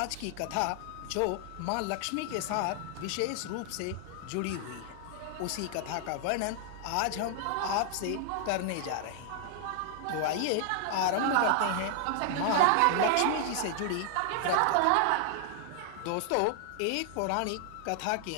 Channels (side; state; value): both; different; correlation 0.00